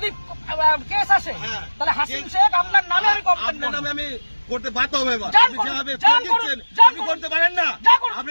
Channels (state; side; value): inverted; both; correlation -1.00